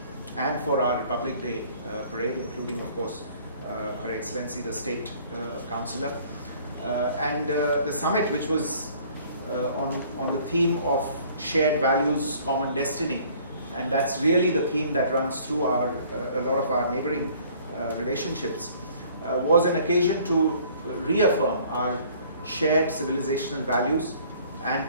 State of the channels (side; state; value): both; inverted; correlation -0.55